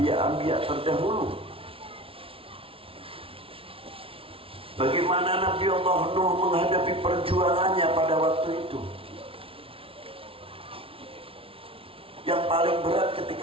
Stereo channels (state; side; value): late; left; 0.26 ms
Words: terdahulu. Bagaimana bagaimana Nabi Allah Nuh menghadapi perjuangannya pada waktu itu. Yang paling berat